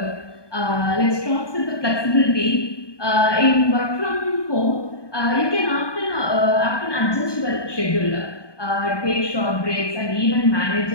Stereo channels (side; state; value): right; late; 1.2 ms